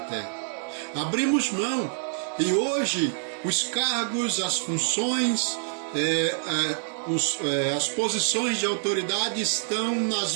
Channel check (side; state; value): left; silent; digital silence